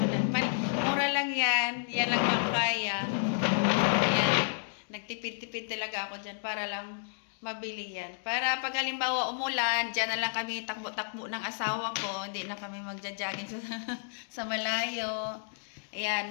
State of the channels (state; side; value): silent; right; digital silence